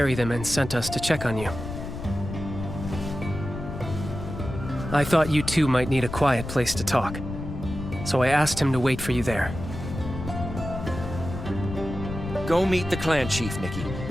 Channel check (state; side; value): noise; left; rumble, 8 dB below the sound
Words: them and sent us to check on you. I thought you two might need a quiet place to talk, so I asked him to wait for you there. Go meet the clan chief, Nikki.